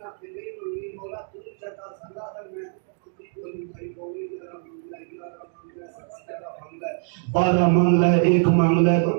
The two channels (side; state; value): left; silent; 56 dB below the other